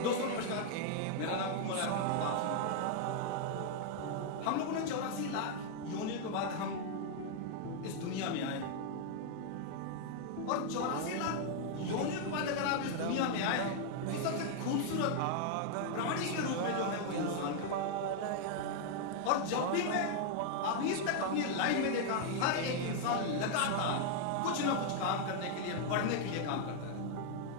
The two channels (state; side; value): different; both; correlation 0.00